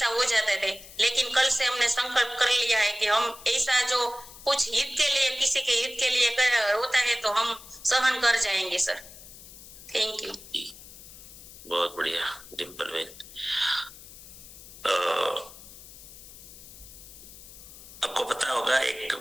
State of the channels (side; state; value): left; noise; hiss, 17 dB below the sound